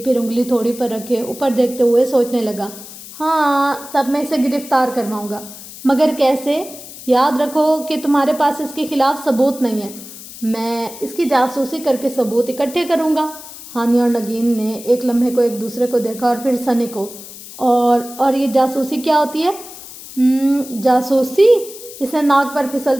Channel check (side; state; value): left; noise; hiss, 15 dB below the sound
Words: उंगली थोड़ी पर रखे ऊपर देखते हुए सोचने लगा। हाँ, तब मैं इसे गिरफ्तार करवाऊंगा, मगर कैसे? याद रखो कि तुम्हारे पास इसके खिलाफ सबूत नहीं है। मैं इसकी जासूसी करके सबूत इकट्ठे करूंगा। हानि और नगीन ने एक लम्हे को एक दूसरे को देखा और फिर सनी को। और ये जासूसी क्या होती है? जासूसी? इसने नाक पर